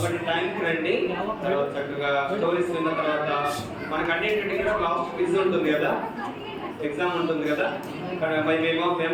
టైంకి రండి. తర్వాత చక్కగా స్టోరీస్ విన్న తర్వాత మనకు అన్నింటికి కూడా లాస్ట్ క్విజ్ ఉంటుంది కదా, ఎగ్జామ్ ఉంటుంది కదా. మేము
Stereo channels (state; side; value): identical; both; correlation 1.00